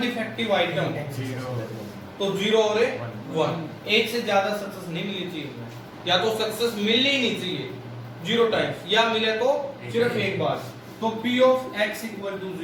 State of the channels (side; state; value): both; identical; correlation 1.00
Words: defective item, तो 0 और 1 एक से ज्यादा सक्सेस नहीं मिलनी चाहिए, या तो सक्सेस मिलनी ही नहीं चाहिए 0 टाइम्स या मिले तो सिर्फ एक बार। तो P of x equal to